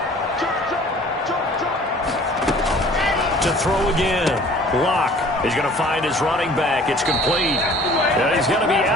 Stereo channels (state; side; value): normal; both; correlation 0.50